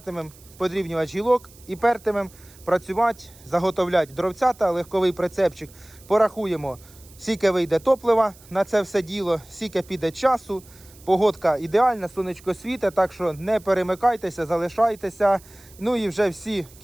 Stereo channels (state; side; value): noise; right; hiss, 24 dB below the sound